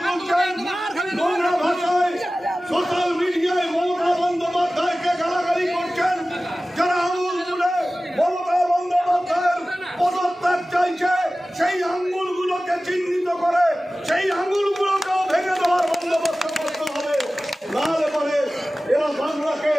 তুলছেন, নোংরা ভাষায় সোশ্যাল মিডিয়ায় মমতা বন্দ্যোপাধ্যায়কে গালাগালি করছেন, যারা আঙুল তুলে মমতা বন্দ্যোপাধ্যায়ের পদত্যাগ চাইছে, সেই আঙুলগুলোকে চিহ্নিত করে সেই আঙুলগুলোকেও ভেঙে দেওয়ার বন্দোবস্ত করতে হবে। নাহলে পরে এরা বাংলাকে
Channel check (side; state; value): both; normal; correlation 0.96